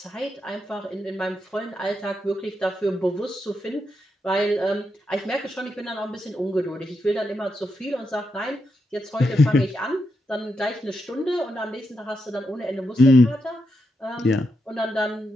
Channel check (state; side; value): normal; both; correlation 0.84